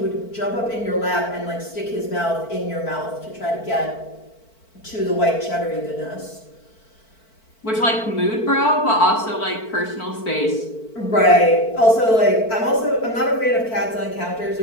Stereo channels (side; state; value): right; late; 4.5 ms